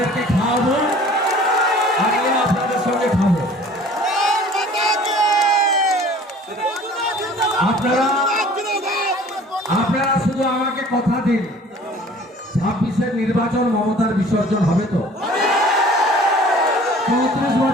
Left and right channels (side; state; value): both; normal; correlation 0.49